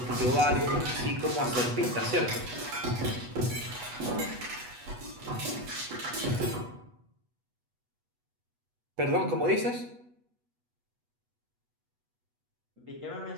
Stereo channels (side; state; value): left; late; 8.2 ms